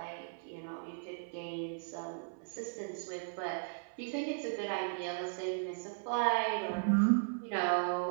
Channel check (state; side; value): silent; left; 53 dB below the other